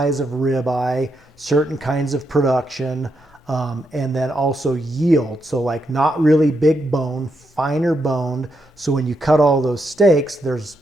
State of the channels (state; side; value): normal; both; correlation 0.81